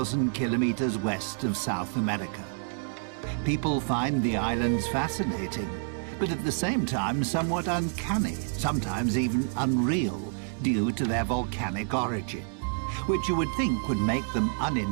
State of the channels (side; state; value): left; silent; digital silence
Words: kilometers west of South America. People find the islands fascinating, but at the same time somewhat uncanny, sometimes even unreal, due to their volcanic origin, which you would think would make them